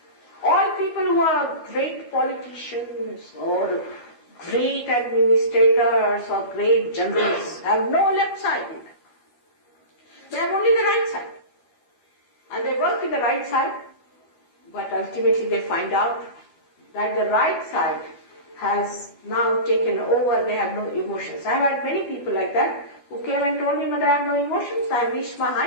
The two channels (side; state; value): right; late; 12 ms